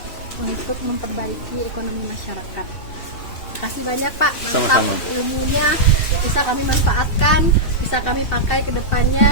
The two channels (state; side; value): late; right; 2.7 ms